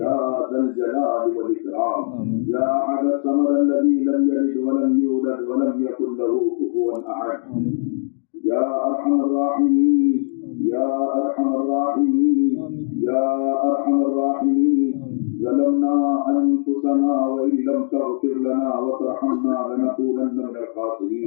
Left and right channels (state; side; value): silent; right; digital silence